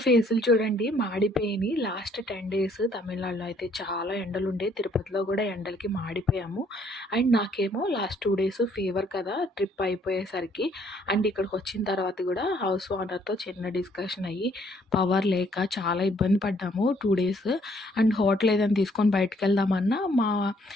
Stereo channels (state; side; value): normal; both; correlation 0.65